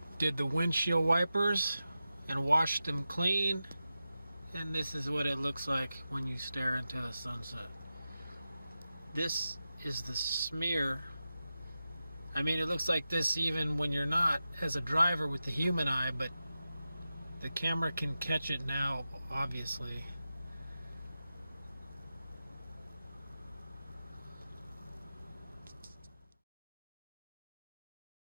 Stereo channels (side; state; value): both; inverted; correlation -0.92